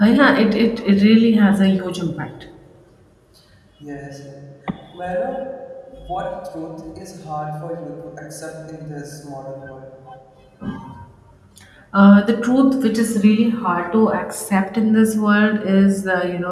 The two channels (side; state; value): both; identical; correlation 1.00